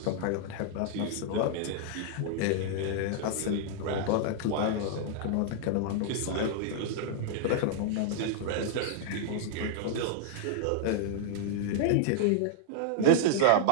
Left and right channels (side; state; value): both; different; correlation -0.01